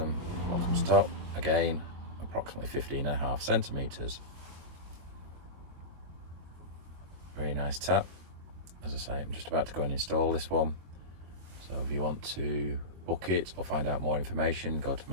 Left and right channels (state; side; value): late; left; 22 ms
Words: bottom to top, again approximately 15.5 centimeters. Very nice tap. As I say, I'm just about to go and install this one, so if you want to book it or find out more information, go to